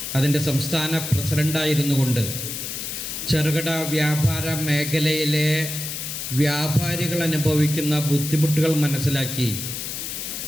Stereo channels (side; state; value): left; noise; hiss, 6 dB below the sound